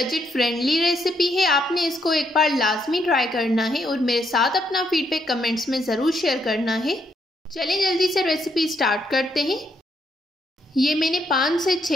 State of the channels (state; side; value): normal; both; correlation 0.75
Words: फ्रेंडली रेसिपी है। आपने इसको एक बार लाजमी ट्राई करना है और मेरे साथ अपना फीडबैक कमेंट्स में ज़रूर शेयर करना है। चलें जल्दी से रेसिपी स्टार्ट करते हैं। ये मैंने 5 से